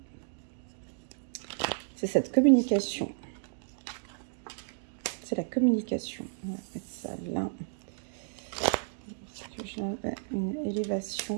C'est cette communication. C'est la communication. On va mettre ça là. Une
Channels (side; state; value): left; silent; digital silence